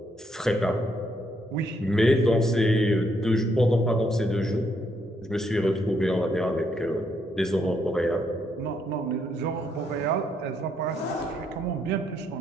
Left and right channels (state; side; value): normal; both; correlation 0.74